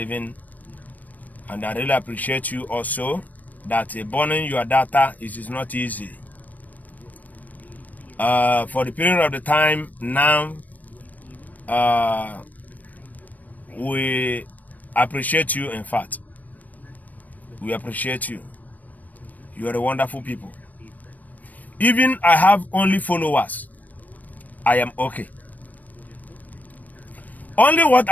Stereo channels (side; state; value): right; late; 0.079 ms